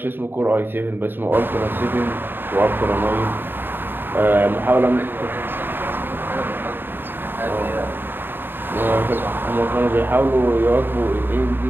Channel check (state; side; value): late; left; 0.097 ms